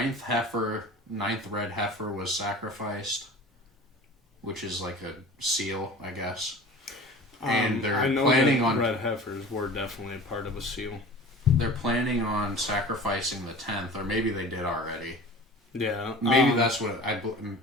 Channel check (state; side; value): normal; both; correlation 0.39